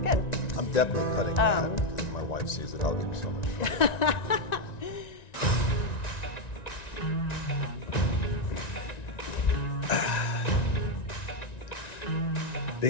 I'm definitely cutting that because if my wife sees it, I'll give her so much trouble.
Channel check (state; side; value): late; right; 1.9 ms